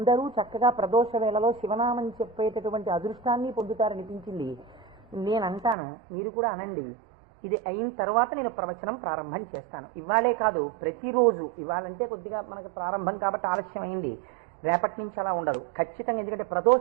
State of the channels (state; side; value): drops out; left; at 5.8 s